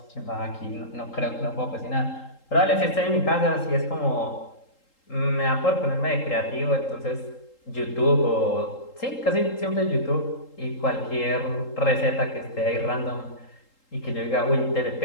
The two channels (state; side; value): late; right; 3.8 ms